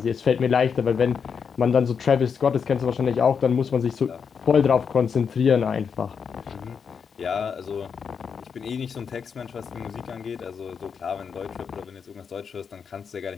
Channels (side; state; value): right; quieter; 6.5 dB